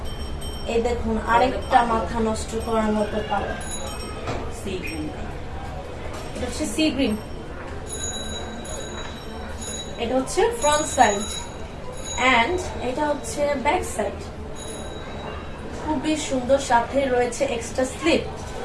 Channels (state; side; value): identical; both; correlation 1.00